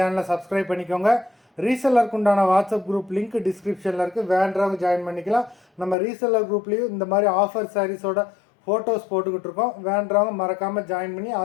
சப்ஸ்கிரைப் பண்ணிக்கோங்க. ரீசெல்லருக்கு உண்டான வாட்ஸ்அப் குரூப் லிங்க் டிஸ்கிரிப்ஷனில் இருக்குது. வேண்டவங்க ஜாயின் பண்ணிக்கலாம். நம்ம ரீசெல்லர் குரூப்லேயும் இந்த மாதிரி ஆஃபர் சாரீஸோட ஃபோட்டோஸ் போட்டுக்கிட்டு இருக்கோம். வேண்டவங்க மறக்காமல் ஜாயின் பண்ணி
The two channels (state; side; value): drops out; right; at 6.0 s